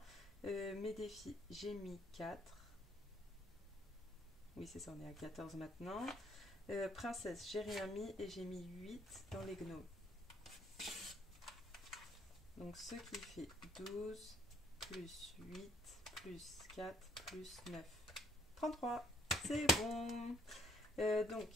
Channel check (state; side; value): normal; both; correlation 0.62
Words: Mes défis, j'ai mis 4. Oui, c'est ça, on est à 14 maintenant. Princesse, j'ai rien mis et j'ai mis 8 dans les gnomes. Donc ce qui fait 12 plus 8 plus 4 plus 9. 33, c'est bon. Donc,